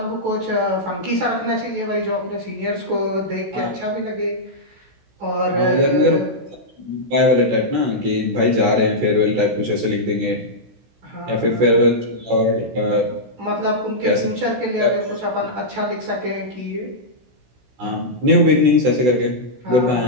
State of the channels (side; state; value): left; late; 16 ms